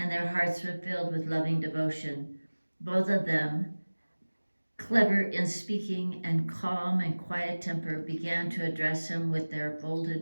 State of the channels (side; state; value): both; inverted; correlation -1.00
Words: their hearts were filled with loving devotion. Both of them, clever in speaking and calm and quiet temper, began to address him with their